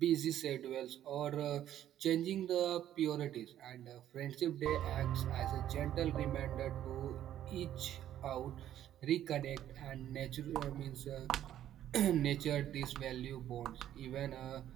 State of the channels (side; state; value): left; quieter; 11.6 dB